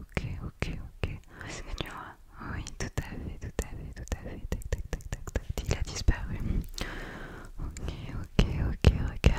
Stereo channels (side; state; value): both; identical; correlation 1.00